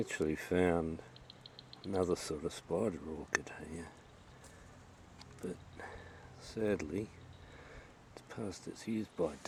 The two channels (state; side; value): identical; both; correlation 1.00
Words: found another sort of spider orchid here. But sadly, it's past its use by